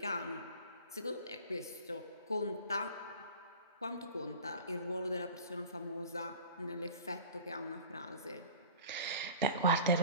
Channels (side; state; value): both; inverted; correlation -0.41